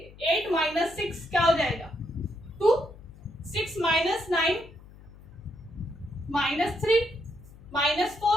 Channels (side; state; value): left; noise; hum, 20 dB below the sound